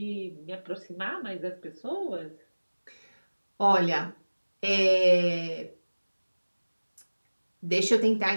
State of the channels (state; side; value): inverted; both; correlation -1.00